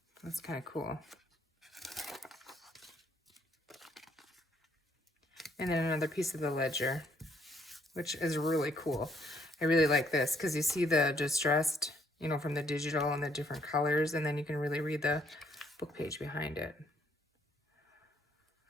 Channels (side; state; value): both; normal; correlation 0.68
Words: That's kind of cool. And then another piece of the ledger, which is really cool. I really like this because you see the distressed, you know, from the digital and the different colors, and then you can really read the book page behind it.